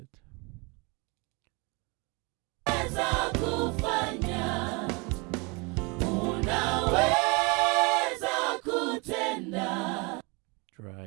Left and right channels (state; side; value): quieter; left; 29.4 dB